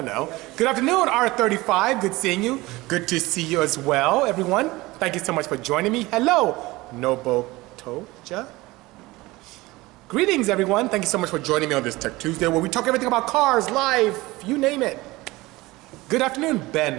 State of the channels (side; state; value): left; quieter; 20.5 dB